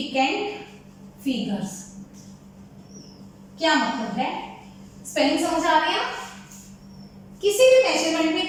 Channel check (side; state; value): both; identical; correlation 1.00